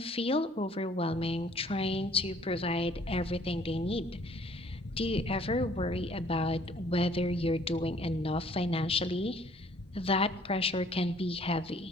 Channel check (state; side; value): normal; both; correlation 0.58